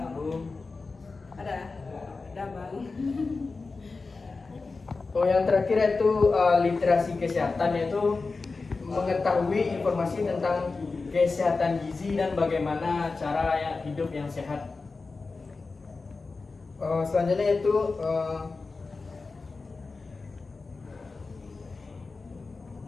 nabung. Ada bang. Yang terakhir itu literasi kesehatan, yaitu mengetahui informasi tentang kesehatan gizi dan bagaimana cara hidup yang sehat. Selanjutnya itu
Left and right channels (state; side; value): quieter; right; 4.0 dB